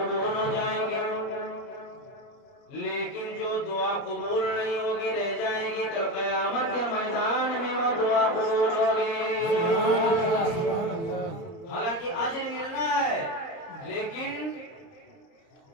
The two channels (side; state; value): right; late; 30 ms